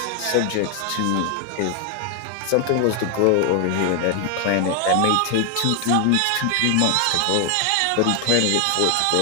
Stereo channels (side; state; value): both; different; correlation 0.00